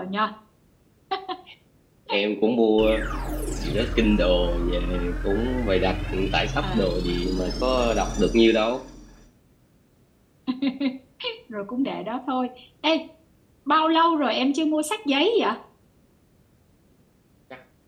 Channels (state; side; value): identical; both; correlation 1.00